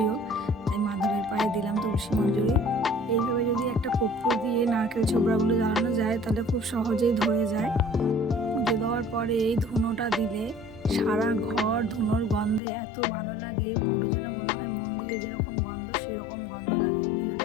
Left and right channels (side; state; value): right; drops out; at 12.6 s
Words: তাই মাধবের পায়ে দিলাম তুলসী মঞ্জুরি। এইভাবে যদি একটা কর্পূর দিয়ে নারকেল ছোবড়াগুলো জ্বালানো যায়, তাহলে খুব সহজেই ধরে যায়। পুজো দেওয়ার পরে এই ধুনোটা দিলে সারা ঘর ধুনোর গন্ধে এত ভালো লাগে, পুরো যেন মনে হয় মন্দিরে যেরকম গন্ধ সেরকম গন্ধ লাগে। ভিডিওটা